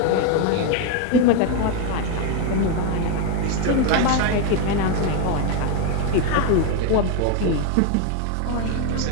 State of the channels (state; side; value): different; both; correlation 0.01